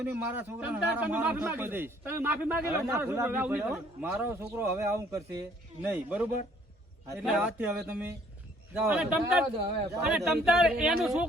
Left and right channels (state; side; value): normal; both; correlation 0.60